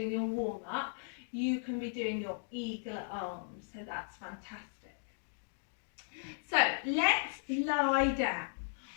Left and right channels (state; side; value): silent; right; digital silence